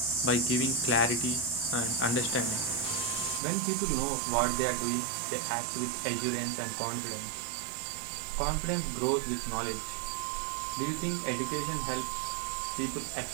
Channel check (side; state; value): left; drops out; at 3.4 s